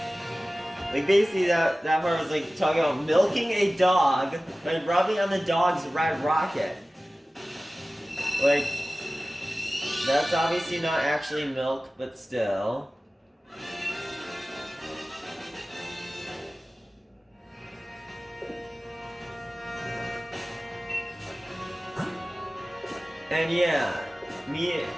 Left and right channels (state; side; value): normal; both; correlation 0.97